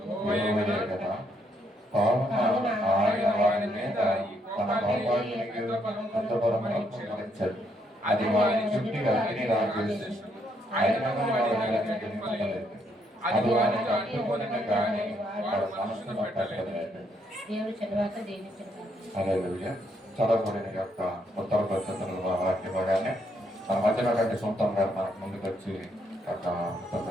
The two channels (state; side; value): normal; both; correlation 0.73